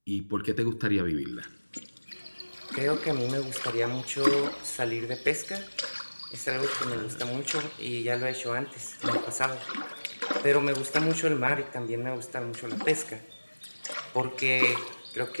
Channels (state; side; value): inverted; both; correlation -1.00